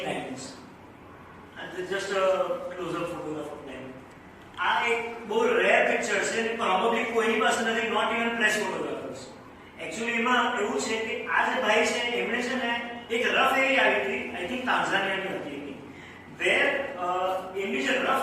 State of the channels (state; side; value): identical; both; correlation 1.00